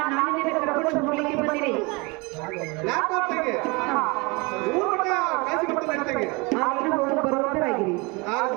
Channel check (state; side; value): quieter; left; 27.3 dB